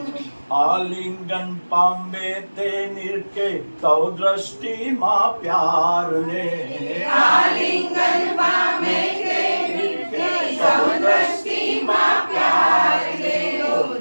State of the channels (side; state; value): both; inverted; correlation -1.00